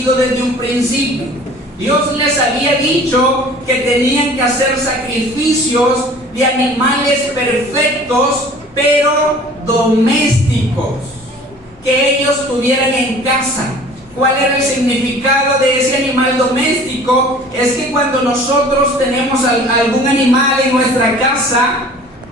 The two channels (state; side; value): normal; both; correlation 0.47